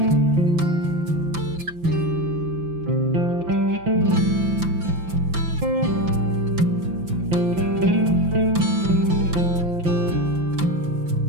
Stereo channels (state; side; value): late; left; 5.9 ms